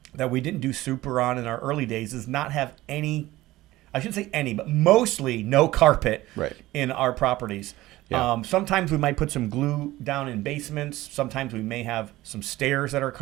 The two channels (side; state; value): left; quieter; 17.4 dB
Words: that we didn't do super on in our early days is not have any, I shouldn't say any, but mostly no carpet in our properties. Sometimes we might put some glue down in basements. Sometimes we may have some stairs that are